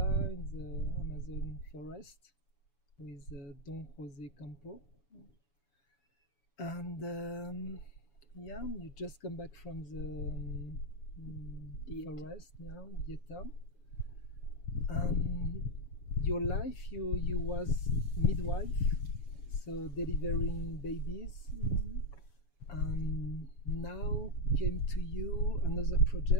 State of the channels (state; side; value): late; right; 7.1 ms